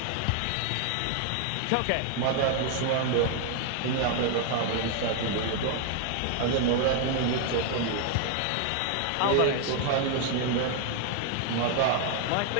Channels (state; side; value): different; both; correlation 0.00